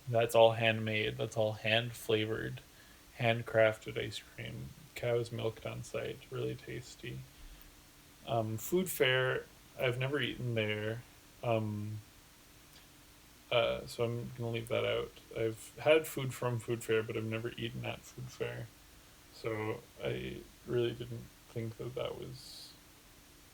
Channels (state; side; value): identical; both; correlation 1.00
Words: that's all handmade. That's all hand flavored, handcrafted ice cream. Cow's milked on site. Really tasty. Food Fair, I've never eaten there. Um, so I'm gonna leave that out. I've had food from Food Fair, but I've never eaten at Food Fair. So I really didn't think that that was